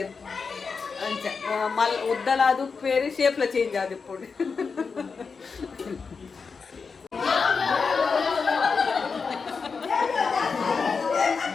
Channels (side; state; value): right; quieter; 5.1 dB